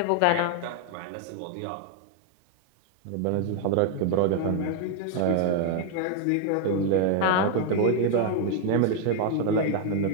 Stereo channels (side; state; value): both; different; correlation 0.00